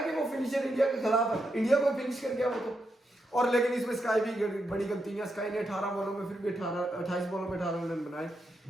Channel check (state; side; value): normal; both; correlation 0.83